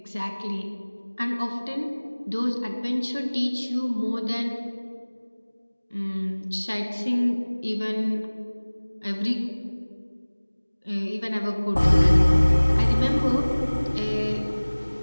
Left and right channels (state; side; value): inverted; both; correlation -1.00